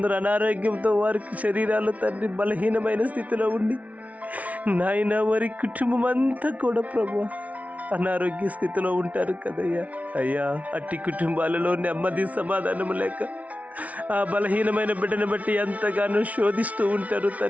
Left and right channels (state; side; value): late; left; 0.069 ms